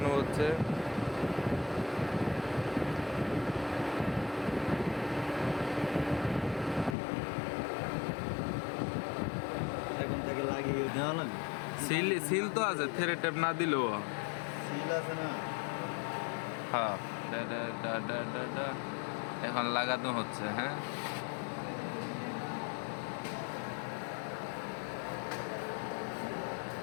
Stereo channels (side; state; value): right; drops out; at 7.0 s